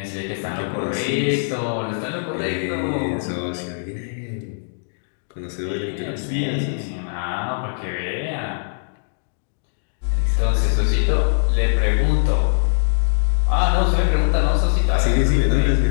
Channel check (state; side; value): silent; right; digital silence